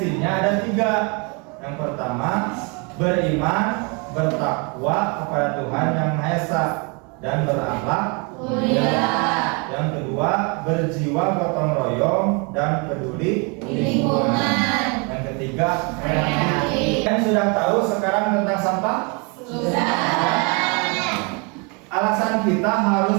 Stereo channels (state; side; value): quieter; left; 32.6 dB